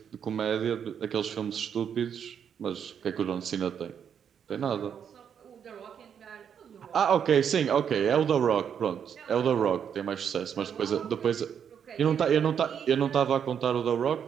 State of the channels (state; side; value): quieter; left; 8.0 dB